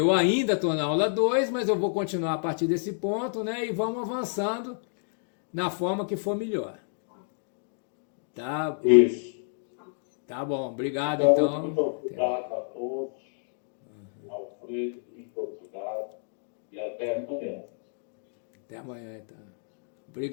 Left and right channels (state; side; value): silent; right; digital silence